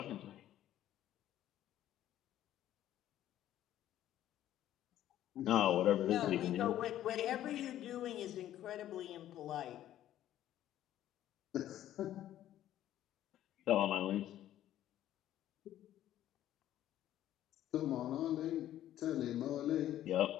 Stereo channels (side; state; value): right; quieter; 12.5 dB